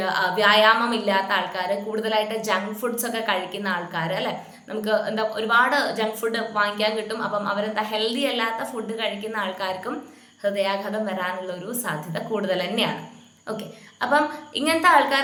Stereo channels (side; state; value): both; identical; correlation 1.00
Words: വ്യായാമം ഇല്ലാത്ത ആൾക്കാർ, കൂടുതലായിട്ട് ജങ്ക് ഫുഡ്സ് ഒക്കെ കഴിക്കുന്ന ആൾക്കാർ അല്ലെ, നമുക്ക് ഒരുപാട് ജങ്ക് ഫുഡ് വാങ്ങിക്കാൻ കിട്ടും. അപ്പം ഹെൽത്തി അല്ലാത്ത ഫുഡ് കഴിക്കുന്ന ആൾക്കാർക്കും ഹൃദയാഘാതം വരാനുള്ള ഒരു സാധ്യത കൂടുതൽ തന്നെയാണ്. ഓക്കെ. അപ്പം ഇങ്ങനത്തെ